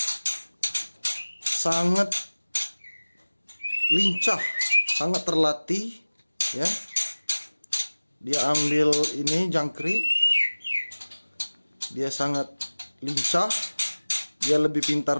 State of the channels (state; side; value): inverted; both; correlation -1.00